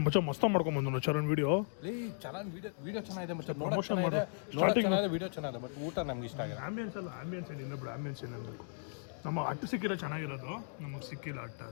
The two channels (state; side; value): silent; right; digital silence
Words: ಮಚ್ಚ ಮಸ್ತ ಮಾಡ್ಕೊಂಬಂದು ಚರಣ್ ವಿಡಿಯೋ. ಚೆನ್ನಾಗಿ ವಿಡಿಯೋ ಚೆನ್ನಾಗಿದೆ ಮಚ್ಚ, ನೋಡೋಕೆ ಚೆನ್ನಾಗಿದೆ, ವಿಡಿಯೋ ಚೆನ್ನಾಗಿದೆ, ಬಟ್ ಊಟ ನಮ್ಗೆ ಇಷ್ಟ ಆಗಿದೆ. ಆಂಬಿಯನ್ಸ್ ಅಲ್ಲ, ಆಂಬಿಯನ್ಸ್ ಏನಿಲ್ಲ ಬಿಡು, ಆಂಬಿಯನ್ಸ್ ಏನಿರಬೇಕು. ನಮ್ಮ ಅಟ್ಟು ಸಿಕ್ಕಿರೋ ಚೆನ್ನಾಗಿರೋದು, ನಮಗೆ ಸಿಕ್ಕಿಲ್ಲ